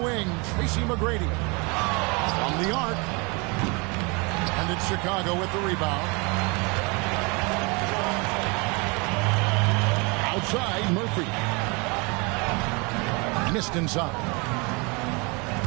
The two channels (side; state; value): left; quieter; 29.5 dB